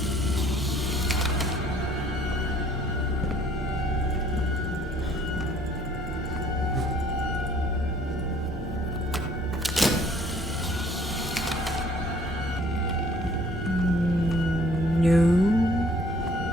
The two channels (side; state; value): both; normal; correlation 0.58